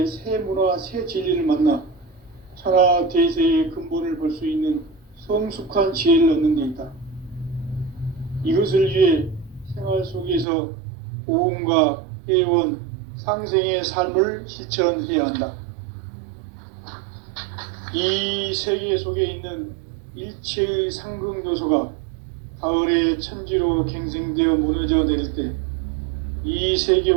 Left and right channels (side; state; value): left; drops out; at 10.5 s